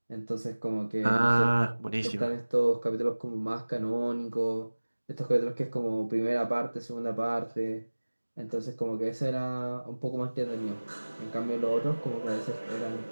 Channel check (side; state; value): both; inverted; correlation -1.00